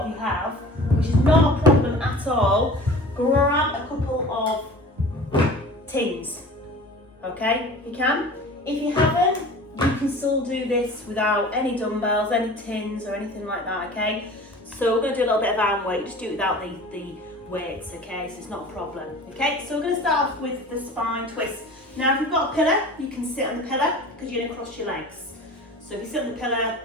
of you have, which is not a problem at all, grab a couple of tins, okay, if you can. If you haven't, you can still do this without any dumbbells, any tins or anything like that, okay? So we're going to do a little bit of arm weight, just do it without the weights, okay, so it's not a problem, okay? So we're going to start off with the spine twist. Now if you've got a pillar, you can sit on the pillar because you're going to cross your legs. So if you sit on the pillar,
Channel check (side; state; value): both; normal; correlation 0.41